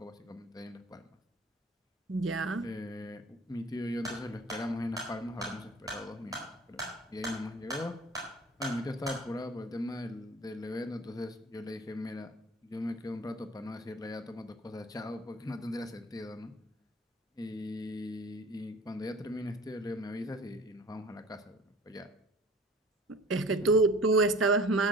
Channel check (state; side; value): normal; both; correlation 0.45